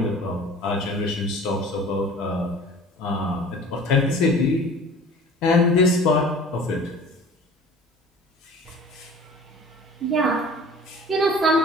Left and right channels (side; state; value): both; normal; correlation 0.44